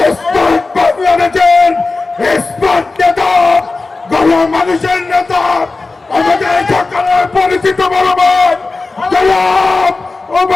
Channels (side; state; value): right; quieter; 3.7 dB